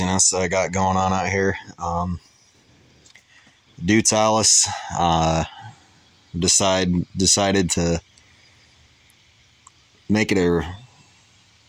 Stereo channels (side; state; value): both; identical; correlation 1.00